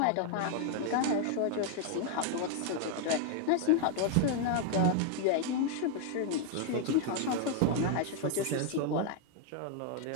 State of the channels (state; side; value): different; both; correlation 0.00